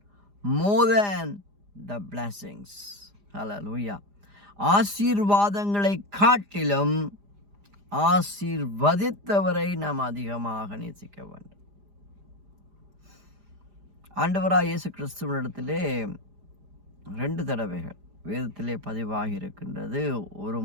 more than the blessings. Hallelujah. ஆசீர்வாதங்களை காட்டிலும் ஆசீர்வதித்தவரை நாம் அதிகமாக நேசிக்க வேண்டும். ஆண்டவராகிய இயேசு கிறிஸ்துவினிடத்திலே 2 தடவைகள் வேதத்திலே பதிவாகி இருக்கின்றது. ஒரு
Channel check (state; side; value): late; left; 4.9 ms